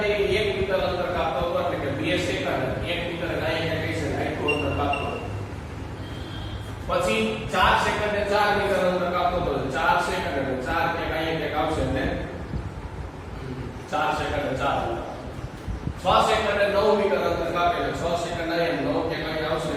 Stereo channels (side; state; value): both; identical; correlation 1.00